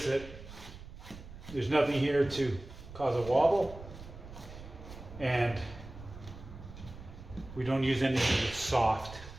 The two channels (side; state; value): right; noise; rumble, 15 dB below the sound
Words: that there's nothing here to cause a wobble, and we don't use anything that's soft.